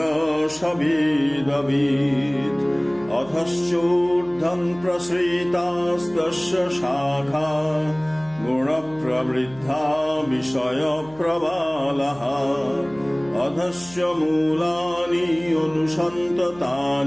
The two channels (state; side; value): noise; right; hum, 23 dB below the sound